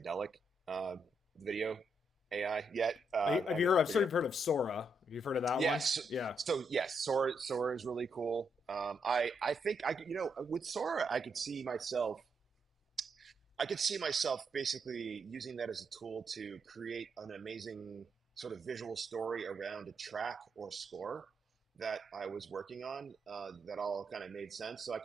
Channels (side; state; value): both; normal; correlation 0.79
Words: video AI yet. Have you heard? I've sort of heard of Sora. Have you heard of that one? Yes. Yeah. So yes, Sora is really cool. I think I could, with Sora, I could see myself basically using that as a tool to create an amazing sort of visual story around a track or score that I was working on, that all kind of made sense. So I